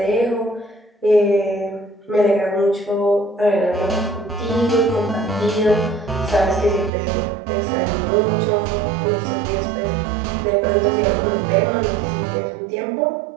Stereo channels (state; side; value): drops out; left; at 6.9 s